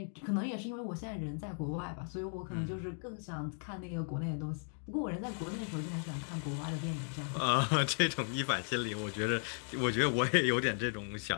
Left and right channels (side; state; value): right; silent; 54 dB below the other